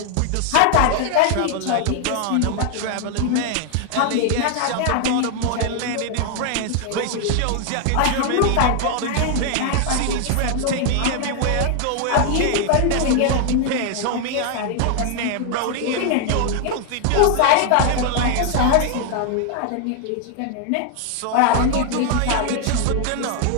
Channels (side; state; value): both; different; correlation 0.00